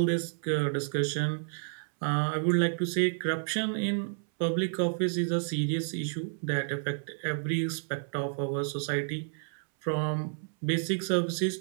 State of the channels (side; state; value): left; silent; 58 dB below the other